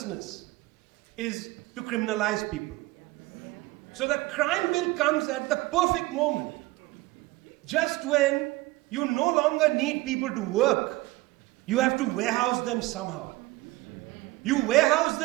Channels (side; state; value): left; quieter; 20.0 dB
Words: is to criminalize people. So the crime bill comes at the perfect moment. Just when you no longer need people to work, you have to warehouse them somehow. You warehouse